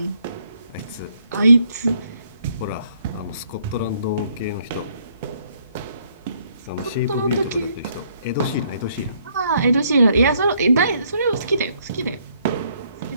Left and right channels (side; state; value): both; inverted; correlation -0.69